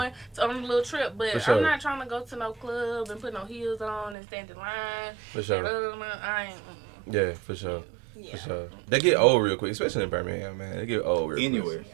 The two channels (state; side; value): drops out; left; at 4.2 s